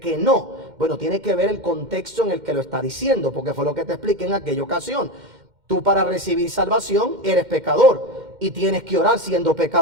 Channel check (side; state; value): left; late; 2.1 ms